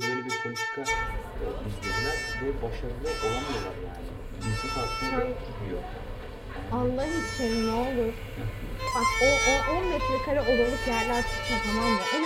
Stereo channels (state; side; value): identical; both; correlation 1.00